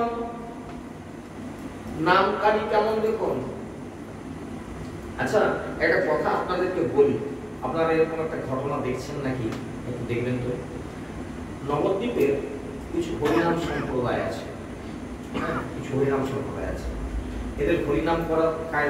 নামকারী কেমন দেখুন। আচ্ছা একটা কথা আপনাদেরকে বলি, আপনারা এরকম একটা ঘটনা দেখছেন নাকি একটু দেখবেন তো। নবদ্বীপের কিছু হরিনাম সম্প্রদায় আছে, কিছু হরিনাম সম্প্রদায় আছে। এদের হরিনাম করার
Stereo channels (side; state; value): both; identical; correlation 1.00